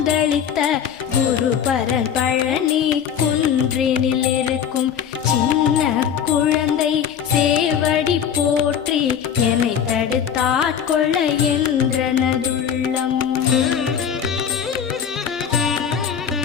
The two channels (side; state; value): right; quieter; 8.2 dB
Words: குருபரன் பழனி குன்றினில் இருக்கும் சின்ன குழந்தை சேவடி போற்றி என்னை தடுத்தாட்கொள்ள என்றனதுள்ளம்.